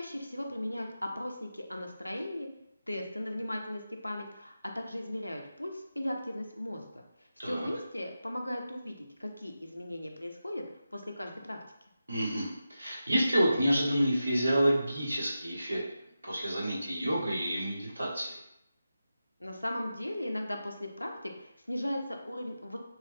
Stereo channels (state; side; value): inverted; both; correlation -0.91